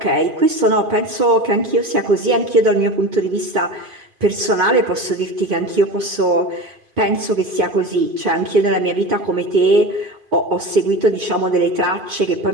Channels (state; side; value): late; left; 2.5 ms